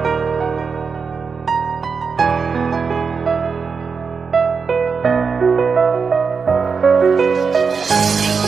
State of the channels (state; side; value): quieter; left; 5.4 dB